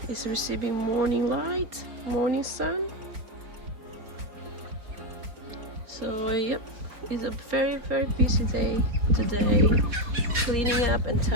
is receiving morning light, morning sun. So yep, it's a very busy day today, cleaning up and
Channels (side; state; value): left; late; 4.6 ms